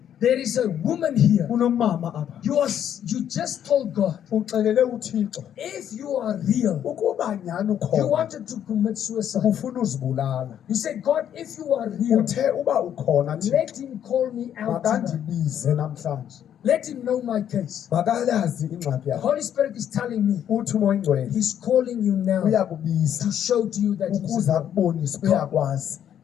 there is a woman here. Kunomama apha. You just told God, Uxelele uThixo. if you are real, Ukuba nyani you ukhona. wanted to commit suicide. Ufuna uzibulala. You said, God, if you are real, Uthe uba ukhona Thixo. let him call me out tonight. Makandibize namhlanje. Let him know my case. Makalazi ingxaki The yakho. Holy Spirit is telling me Uthi umoya oyingcwele he's calling you now uyakubiza to show to you that he's ukuze real. akubonise uyakwazi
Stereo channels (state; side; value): quieter; right; 9.8 dB